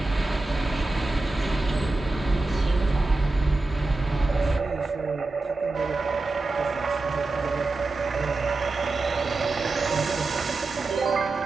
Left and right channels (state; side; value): quieter; left; 3.2 dB